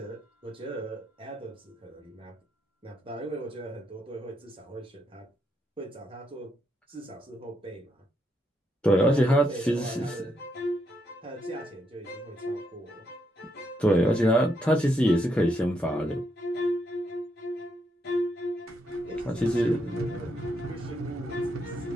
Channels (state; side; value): normal; both; correlation 0.78